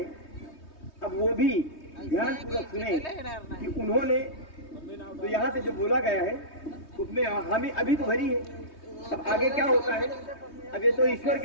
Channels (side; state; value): right; late; 3.2 ms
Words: अब वो भी ध्यान पूर्वक सुने कि उन्होंने तो यहाँ से जो बोला गया है उसमें हामी अभी तो भरी है। अब आगे क्या होता है, अब ये तो ईश्वर